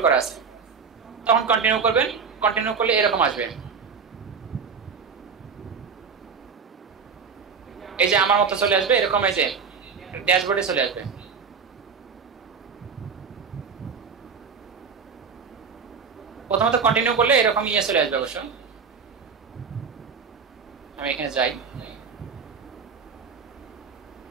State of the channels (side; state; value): left; quieter; 5.8 dB